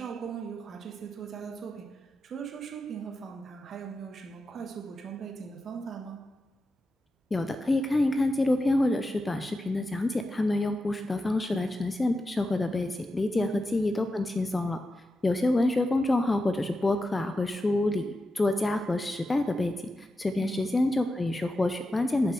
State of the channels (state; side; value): normal; both; correlation 0.89